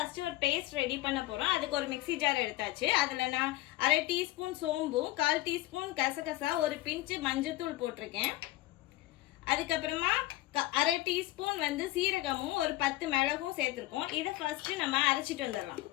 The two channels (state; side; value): quieter; right; 17.2 dB